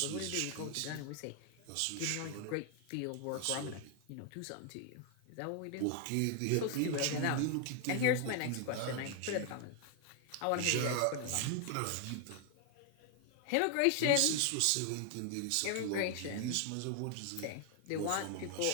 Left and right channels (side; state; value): both; different; correlation 0.00